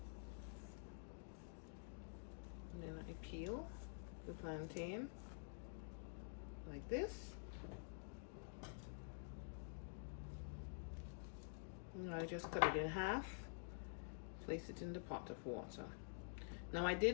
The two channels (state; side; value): silent; right; digital silence